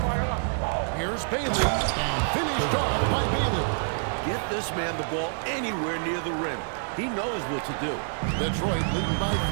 Here's Bailey, and finished off by Bailey. Get this man the ball anywhere near the rim. He knows what to do. Detroit leading by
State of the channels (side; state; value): left; silent; digital silence